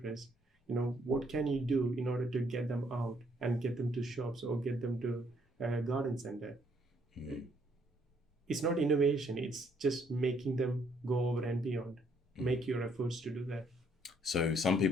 what can you do in order to get them out and get them to shops or get them to a garden center? It's not innovation, it's just making them go over and beyond. Make your efforts to do that. So some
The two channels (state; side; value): normal; both; correlation 0.68